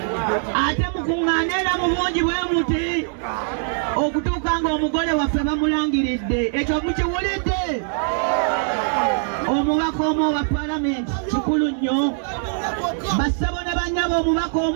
ate mukuŋŋaane era mu bungi bwe muti okutuuka nga omugole waffe bamulangiridde ekyo mukiwulidde omubaka omu wa palamenti kikulu nnyo bassebo ne bannyabo omubaka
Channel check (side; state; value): left; silent; 64 dB below the other